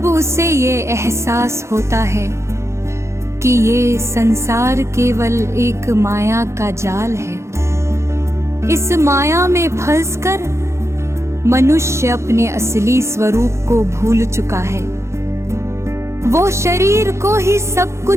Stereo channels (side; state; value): left; late; 0.13 ms